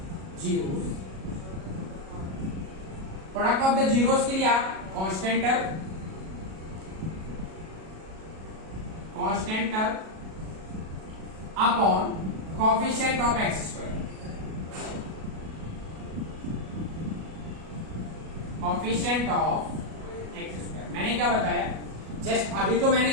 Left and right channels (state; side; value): late; left; 37 ms